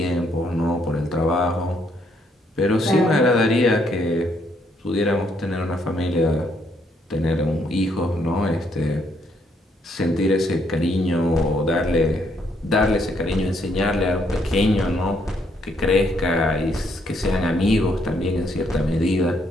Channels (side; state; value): both; normal; correlation 0.72